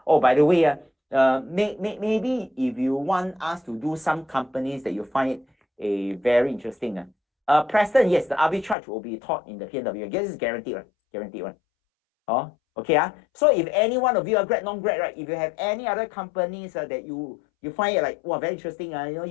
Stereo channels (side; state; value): right; drops out; at 8.8 s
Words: Oh, by the way, maybe if you want us to do some companies that you find very interesting. Preston, yes, the arbitrage will be taught in the PNW. I guess it's guaranteed, right? Guaranteed, right? Oh, okay. So if any one of you are grad, non-grad, right? If you have any other companies that you find it like, wow, very interesting,